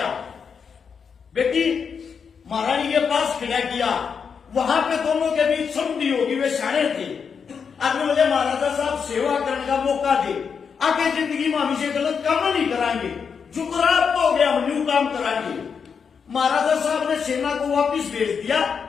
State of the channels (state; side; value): quieter; right; 6.3 dB